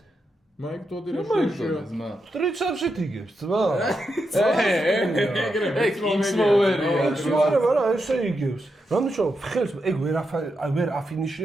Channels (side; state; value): both; normal; correlation 0.85